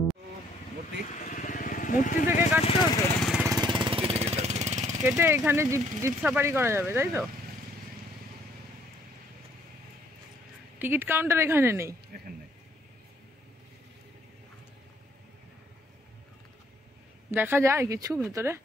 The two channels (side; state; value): both; normal; correlation 0.65